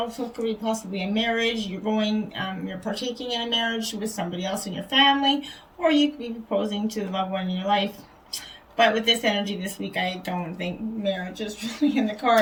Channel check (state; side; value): identical; both; correlation 1.00